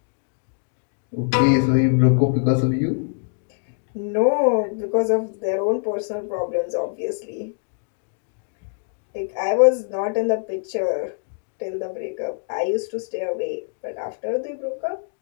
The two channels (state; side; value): silent; right; digital silence